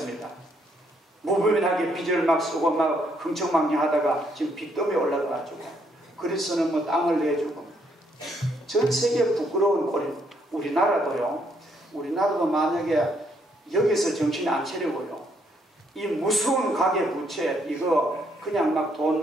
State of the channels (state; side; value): normal; both; correlation 0.72